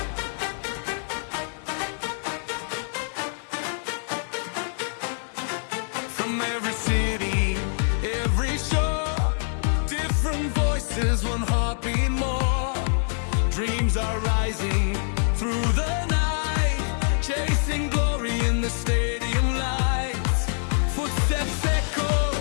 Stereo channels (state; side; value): silent; right; digital silence